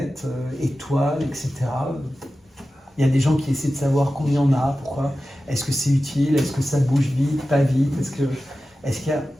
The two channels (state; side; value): normal; both; correlation 0.94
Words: étoiles, etc. Il y a des gens qui essaient de savoir combien on a, pourquoi, est-ce que c'est utile, est-ce que ça bouge vite, pas vite, est-ce qu'il y a...